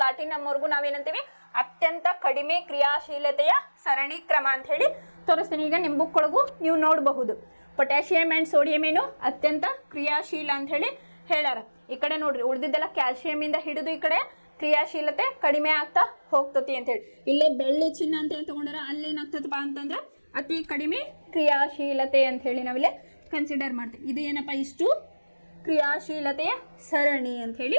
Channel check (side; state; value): both; inverted; correlation -1.00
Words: ವರೆಗೂ ನಾವೇನಂತೀವಿ ಅತ್ಯಂತ ಕಡಿಮೆ ಕ್ರಿಯಾಶೀಲತೆಯ ಸರಣಿ ಕ್ರಮ ಅಂತ ಹೇಳಿ ತೋರಿಸ್ತೀನಿ. ಈಗ ನಿಮ್ಮ ಬುಕ್ ಒಳಗೂ ನೀವು ನೋಡಬಹುದು ಪೊಟ್ಯಾಷಿಯಂ ಅಂಡ್ ಸೋಡಿಯಂ ಏನು ಅತ್ಯಂತ ಕ್ರಿಯಾಶೀಲ ಅಂತ ಹೇಳಿ ಹೇಳ್ಯಾರ. ಈ ಕಡೆ ನೋಡ್ರಿ, ಉಳಿದಿದ್ದೆಲ್ಲ ಕ್ಯಾಲ್ಸಿಯಂ ಇಂದ ಹಿಡಿದು ಈ ಕಡೆ ಕ್ರಿಯಾಶೀಲತೆ ಕಡಿಮೆ ಆಗ್ತಾ ಹೋಗ್ತತಿ ಅಂತ ಹೇಳಿ. ಇಲ್ಲೇ ಬೆಳ್ಳಿ ಚಿನ್ನ ಅಂತ ಹೇಳಿ ತಗೊಂಡಾರ, ಅಲ್ಲೇನಾಗ್ತದಪ್ಪ ಅಂತಂದ್ರೆ ಅತಿ ಕಡಿಮೆ ಕ್ರಿಯಾಶೀಲತೆ ಅಂತ ಹೇಳಿ ನಾವಿಲ್ಲೇ ಕನ್ಸಿಡರ್ ಮಾಡ್ತೀವಿ. ಇದು ಏನಪ್ಪ, ಇಷ್ಟು ಕ್ರಿಯಾಶೀಲತೆಯ ಸರಣಿ ಅಂತ ಹೇಳಿ